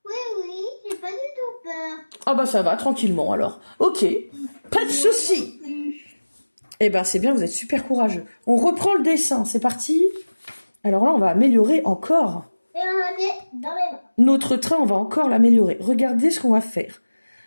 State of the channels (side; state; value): both; inverted; correlation -1.00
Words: Oui, j'ai pas du tout peur. Ah bah ça va, tranquillement alors. Ok, pas de souci. Eh ben c'est bien, vous êtes super courageux. On reprend le dessin, c'est parti. Alors là, on va améliorer encore. Et on est dans les mains. Notre train, on va encore l'améliorer. Regardez ce qu'on va faire.